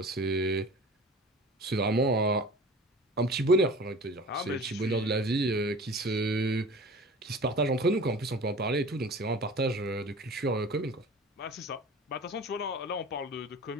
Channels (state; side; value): normal; both; correlation 0.40